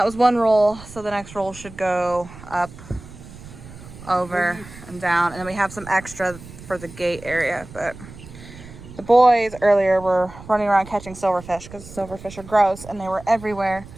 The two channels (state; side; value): noise; right; rumble, 17 dB below the sound